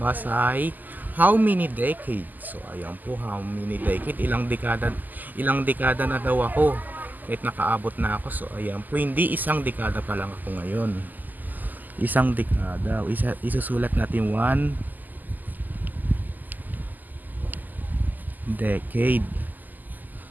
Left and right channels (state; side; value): late; left; 0.084 ms